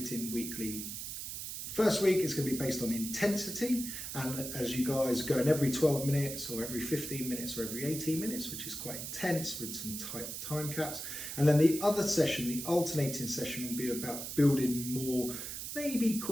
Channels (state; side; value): noise; right; hiss, 6 dB below the sound